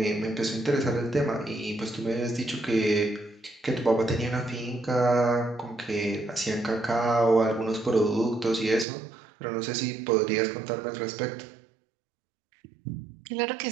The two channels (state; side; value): drops out; left; at 8.8 s